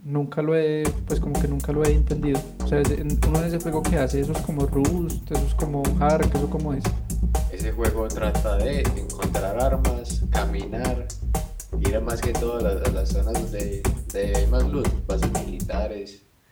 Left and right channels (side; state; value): both; identical; correlation 1.00